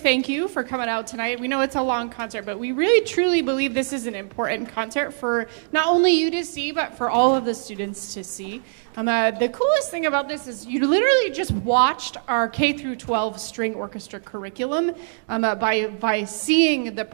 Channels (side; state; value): left; silent; digital silence